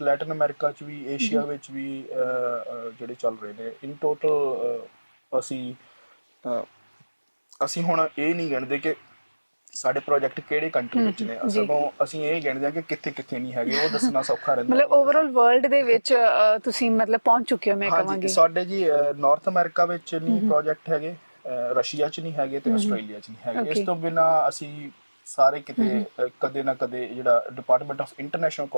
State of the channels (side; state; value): both; inverted; correlation -1.00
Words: ਲੈਟਨ ਅਮਰੀਕਾ 'ਚ ਵੀ ਏਸ਼ੀਆ ਵਿੱਚ ਵੀ ਜਿਹੜੇ ਚੱਲ ਰਹੇ ਨੇ। ਇਨ ਟੋਟਲ ਅਸੀਂ ਹੁਣ ਇਹ ਨਹੀਂ ਗਿਣਦੇ ਕਿ ਸਾਡੇ ਪ੍ਰੋਜੈਕਟ ਕਿਹੜੇ ਕੰਟਰੀ ਵਿੱਚ ਨੇ ਸਗੋਂ ਅਸੀਂ ਇਹ ਗਿਣਦੇ ਆ ਕਿ ਕਿੱਥੇ ਕਿੱਥੇ ਨਹੀਂ ਹੈਗੇ ਉਹ ਦੱਸਣਾ ਸੌਖਾ ਰਹਿੰਦਾ। ਮਤਲਬ ਓਵਰਆਲ ਵਰਲਡ ਦੇ ਵਿੱਚ ਤੁਸੀਂ ਮਤਲਬ ਪਹੁੰਚ ਚੁੱਕੇ ਹੋ ਮੈਂ ਕਹਾਂਗੀ। ਸਾਡੇ ਜੀ ਨਾਰਥ ਅਮਰੀਕਾ ਵਿੱਚ ਨਹੀਂ ਪ੍ਰੋਜੈਕਟ ਹੈਗੇ, ਰਸ਼ੀਆ 'ਚ ਨਹੀਂ ਹੈਗੇ ਤੇ ਆਸਟ੍ਰੇਲੀਆ 'ਚ ਨਹੀਂ ਹੈਗੇ। ਇਸ ਤੋਂ ਬਿਨਾਂ ਅਸੀਂ ਸਾਰੇ ਕਿਤੇ ਕਦੇ ਨਾ ਕਦੇ ਜਿਹੜਾ ਡਿਪਾਰਟਮੈਂਟ ਆਫ ਇੰਟਰਨੈਸ਼ਨਲ